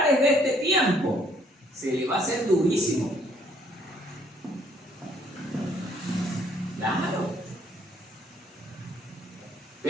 de este tiempo, se le va a hacer durísimo. Claro.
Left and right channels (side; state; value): both; normal; correlation 0.64